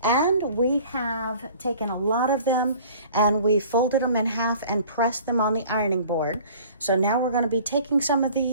And we have taken a lot of them and we folded them in half and pressed them on the ironing board. So now we're going to be taking some of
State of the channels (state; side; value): inverted; both; correlation -0.48